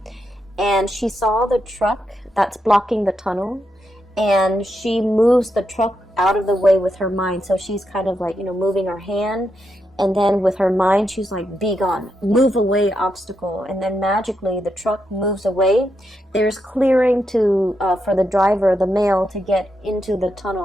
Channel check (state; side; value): normal; both; correlation 0.83